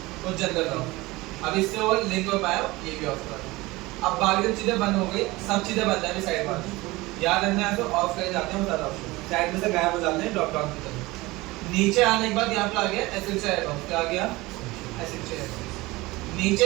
और जनरल ऑफ। अब इससे वो लिंक हो पाया, ये भी ऑफ कर। अब बाकी चीजें बंद हो गई, सब चीजें बंद है साइड में, याद रखना है तो ऑफ कर जाते हैं सारा ऑप्शन, साइड में से गायब हो जाते हैं ड्रॉप डाउन की तरफ। नीचे आने के बाद यहाँ पे आ गया एसेंशियल एडॉन, क्या आ गया एसेंशियल एडॉन।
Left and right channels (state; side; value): quieter; left; 20.9 dB